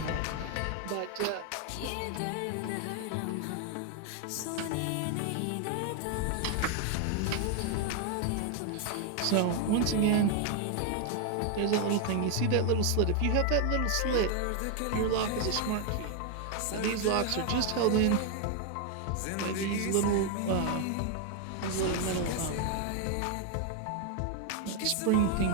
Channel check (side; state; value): both; different; correlation 0.00